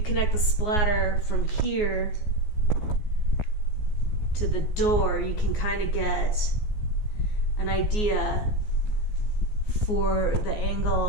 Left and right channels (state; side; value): late; right; 14 ms